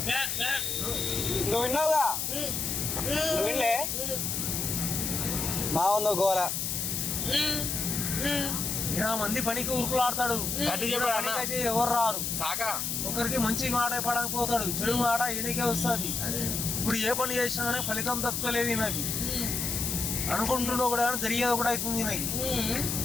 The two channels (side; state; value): left; noise; hiss, 1 dB below the sound